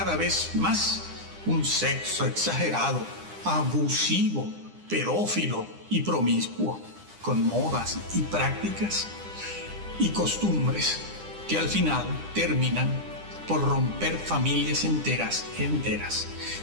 vez más un sexo exagerado, abusivo, pedófilo y promiscuo, con modas y prácticas y costumbres que al final terminan por romper familias enteras,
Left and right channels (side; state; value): left; late; 9.9 ms